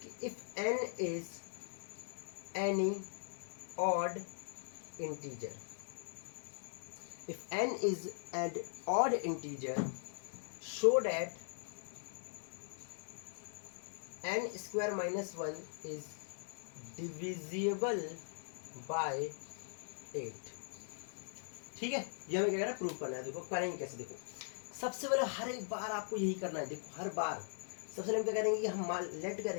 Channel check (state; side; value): silent; right; 51 dB below the other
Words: कि if n is any odd integer, if n is an odd integer, show that n square minus 1 is divisible by 8। ठीक है, ये हमें क्या करना है, प्रूव करना है। देखो करेंगे कैसे, देखो सबसे पहले हर एक बार आपको यही करना है। देखो हर बार सबसे पहले हम क्या करेंगे कि हम लेट